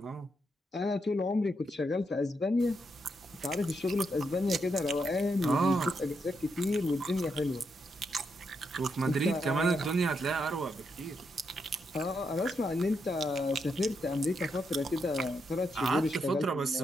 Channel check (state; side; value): normal; both; correlation 0.81